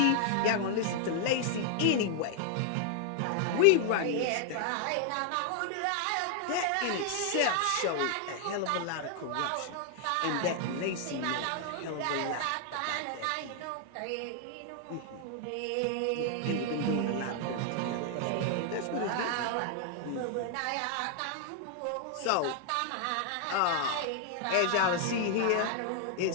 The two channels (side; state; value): both; different; correlation 0.00